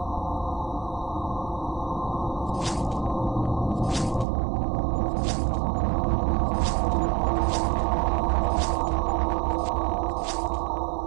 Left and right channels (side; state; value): left; drops out; at 4.2 s